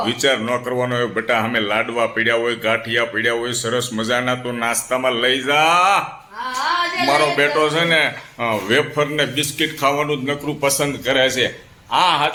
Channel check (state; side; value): identical; both; correlation 1.00